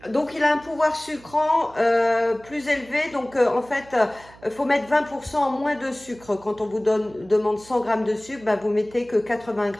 Donc il a un pouvoir sucrant plus élevé, donc en fait il faut mettre 20% en moins de sucre. Quand on vous demande 100 g de sucre, vous mettez que 80 g.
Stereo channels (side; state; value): right; noise; hum, 23 dB below the sound